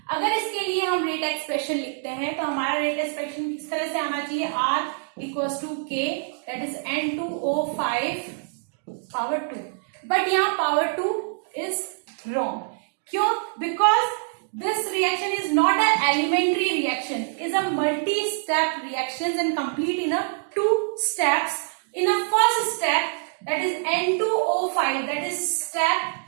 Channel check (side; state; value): left; silent; digital silence